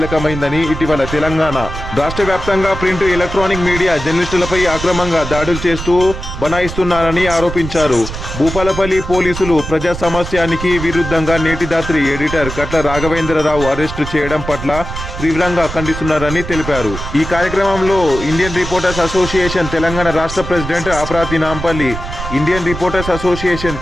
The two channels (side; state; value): right; noise; rumble, 8 dB below the sound